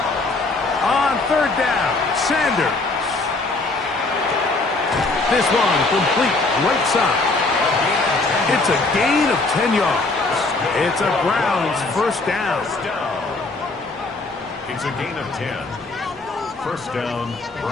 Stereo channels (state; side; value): quieter; right; 3.4 dB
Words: On 3rd down, Sanders. This one complete right side. It's a gain of 10 yards. It's a Browns first down. It's a gain of 10. First down,